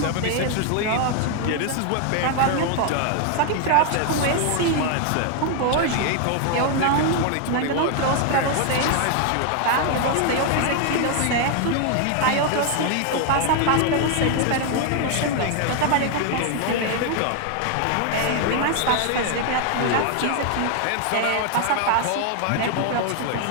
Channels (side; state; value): both; different; correlation 0.00